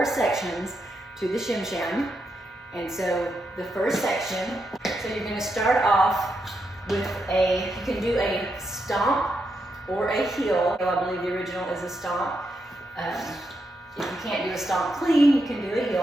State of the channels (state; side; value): normal; both; correlation 0.83